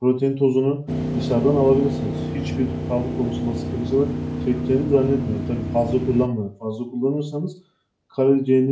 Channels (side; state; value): both; identical; correlation 1.00